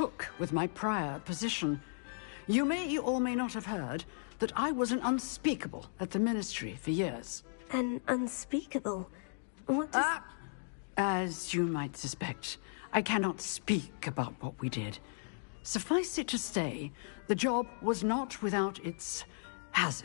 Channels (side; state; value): right; silent; digital silence